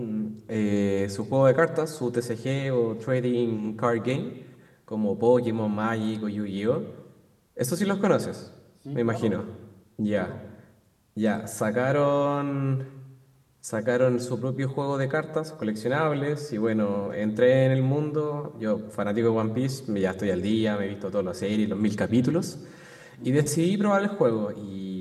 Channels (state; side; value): identical; both; correlation 1.00